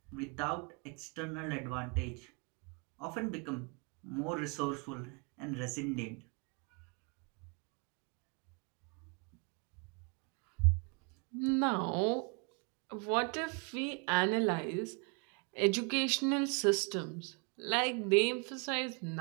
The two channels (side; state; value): left; quieter; 34.4 dB